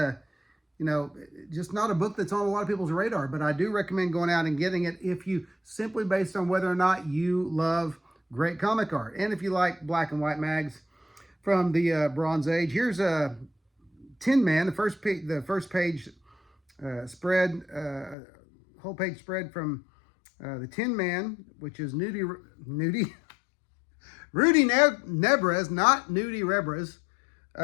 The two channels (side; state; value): right; drops out; at 18.2 s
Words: you know, just not a book that's on a lot of people's radar. But I do recommend going out and getting it if you, simply based on whether or not you love great comic art, and if you like black and white mags from the Bronze Age. Here's a Tin Man, the first page spread, whole page spread from the Tin Man, which is Rudy Nebres, not Nudie Rebres,